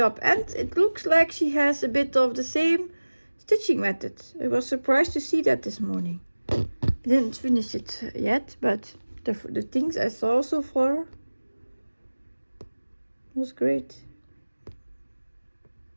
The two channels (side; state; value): both; inverted; correlation -1.00